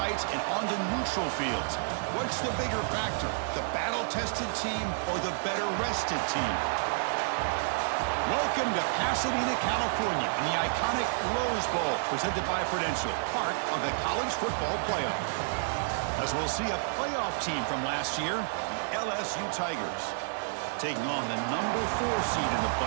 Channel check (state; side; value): silent; left; 58 dB below the other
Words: and onto neutral fields. What's the bigger factor, the battle-tested team or the better-rested team? Welcome to Pasadena, California, in the iconic Rose Bowl, presented by Prudential, part of the college football playoff. As we'll see a playoff team from last year, the LSU Tigers, taking on the number 4 seed in the